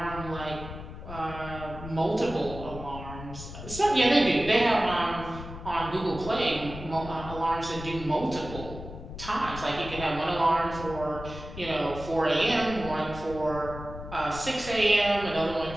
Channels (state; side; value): noise; left; rumble, 11 dB below the sound